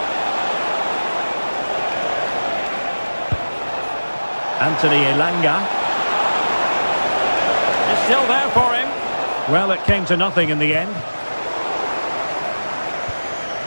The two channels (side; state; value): both; inverted; correlation -1.00